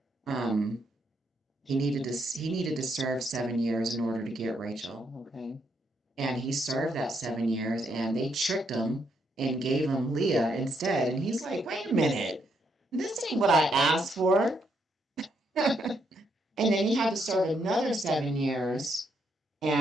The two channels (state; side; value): normal; both; correlation 0.76